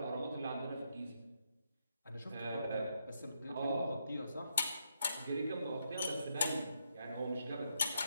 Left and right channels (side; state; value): both; inverted; correlation -0.78